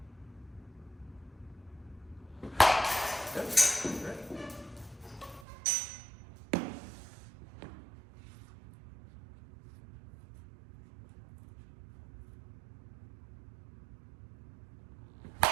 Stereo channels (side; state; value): left; drops out; at 5.5 s